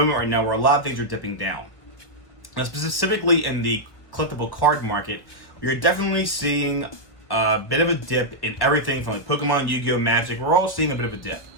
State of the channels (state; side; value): late; right; 1.2 ms